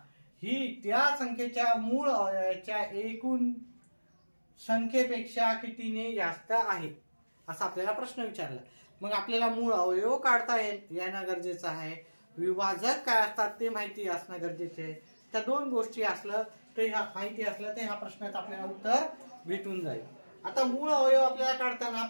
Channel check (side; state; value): both; inverted; correlation -1.00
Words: ही त्या संख्येच्या मूळ अवयवाच्या एकूण संख्येपेक्षा कितीने जास्त आहे असा आपल्याला प्रश्न विचारला. मग आपल्याला मूळ अवयव काढता येणं गरजेचं आहे. विभाजक काय असतात ते माहिती असणं गरजेचे आहे. त्या दोन गोष्टी असलं तर ह्या माहिती असलं तर ह्या प्रश्नात आपल्याला उत्तर भेटून जाईल. आता मूळ अवयव आपल्याला काढताना